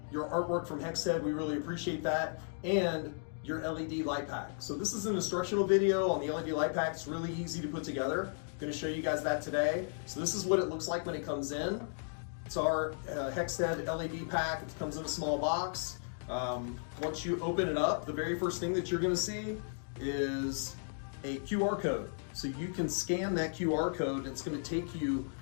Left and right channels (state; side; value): silent; right; digital silence